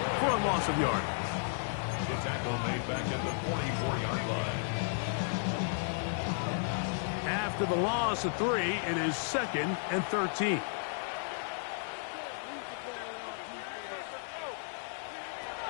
for a loss of yard. The tackle made back at the 44-yard line. After the loss of 3, it is 2nd and 13.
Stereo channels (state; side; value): silent; right; digital silence